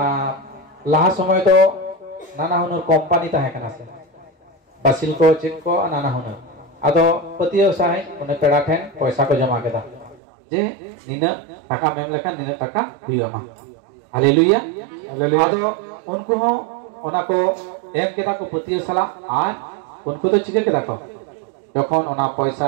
लाहा समय तो नाना हुनर कंपनी ताहे कना से बासिल को चेक को नाना हुनर आदो पतियो साहे उन्हें पेड़ा ठेन पैसा को जमा केदा जे निना टाका मेम लेखान निना टाका हुइमा हालेलुया आदो उनको हो ओना को एम केदा को पतियो सला आर उनको तो चिके केदा को तखन ओना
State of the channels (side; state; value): left; drops out; at 10.2 s